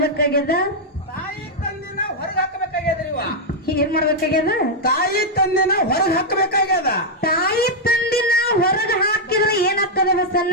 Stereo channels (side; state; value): both; normal; correlation -0.03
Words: ಮಾಡ್ಬೇಕಾಗ್ಯದ? ತಾಯಿ ತಂದಿನ ಹೊರಗೆ ಹಾಕಬೇಕಾಗ್ಯದ್ರಿ ಇವ. ಏನ್ ಮಾಡ್ಬೇಕಾಗ್ಯದ? ತಾಯಿ ತಂದಿನ ಹೊರಗೆ ಹಾಕಬೇಕಾಗ್ಯದ. ತಾಯಿ ತಂದಿನ ಹೊರಗ ಹಾಕಿದ್ರೆ ಏನಾಗ್ತದ